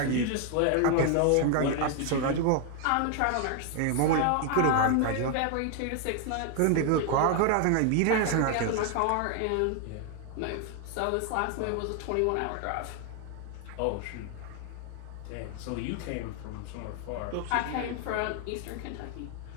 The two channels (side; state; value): both; different; correlation 0.00